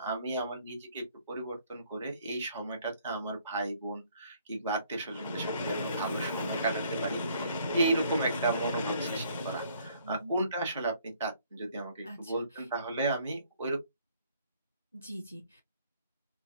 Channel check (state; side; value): inverted; both; correlation -0.62